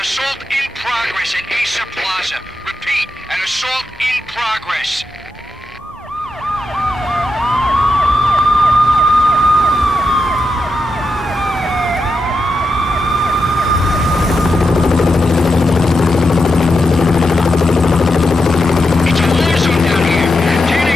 assault in progress at Acer Plaza. Repeat, an assault in progress. It's a war zone down here.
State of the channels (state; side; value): normal; both; correlation 0.86